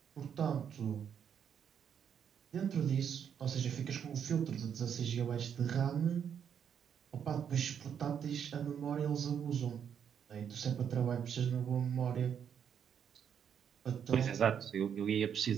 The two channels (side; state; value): left; quieter; 8.1 dB